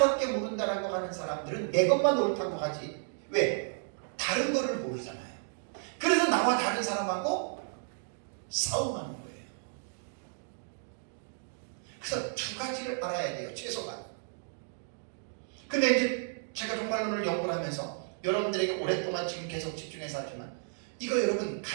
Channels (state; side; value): silent; left; digital silence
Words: 모른다라고 하는 사람들은 내 것만 옳다고 하지. 왜? 다른 거를 모르잖아요. 그래서 나와 다른 사람하고 싸움하는 거예요. 그래서 두 가지를 알아야 돼요, 최소한. 근데 이제 제가 종말론을 연구를 하면서 여러분들에게 오랫동안 지금 계속 집중해서 하지만 이거 여러분